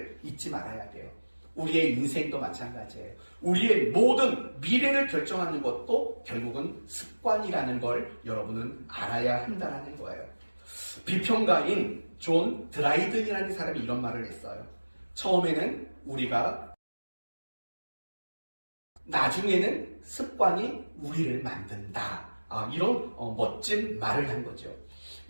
잊지 말아야 돼요. 우리의 인생도 마찬가지예요. 우리의 모든 미래를 결정하는 것도 결국은 습관이라는 걸 여러분은 알아야 한다는 거예요. 비평가인 존 드라이든이라는 사람이 이런 말을 했어요. 처음에는 우리가, 나중에는 습관이 우리를 만든다. 이런 멋진 말을 한 거죠.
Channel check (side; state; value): both; inverted; correlation -1.00